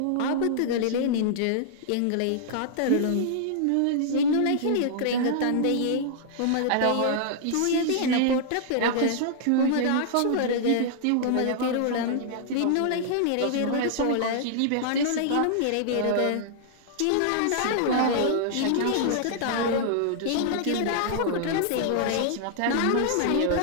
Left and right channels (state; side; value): different; both; correlation -0.01